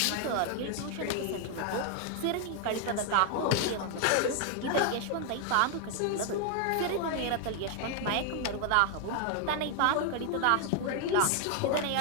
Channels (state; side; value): different; both; correlation 0.00